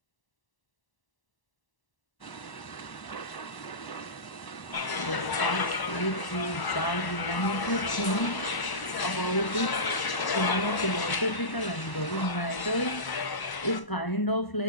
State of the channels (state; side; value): late; right; 1.0 ms